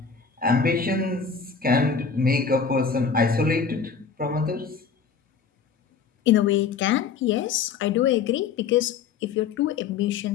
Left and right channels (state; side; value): quieter; right; 5.9 dB